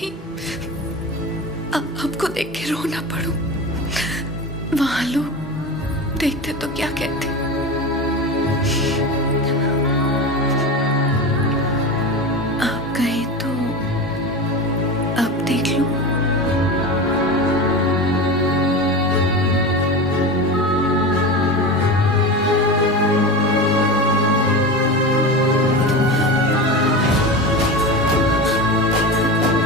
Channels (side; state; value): both; normal; correlation 0.26